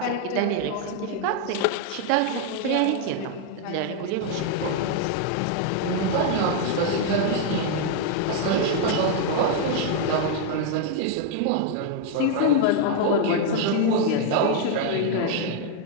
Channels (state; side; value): different; both; correlation 0.00